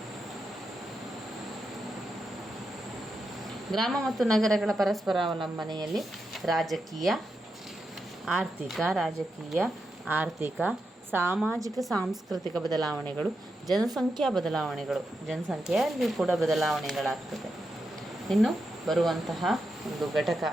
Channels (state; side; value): normal; both; correlation 0.86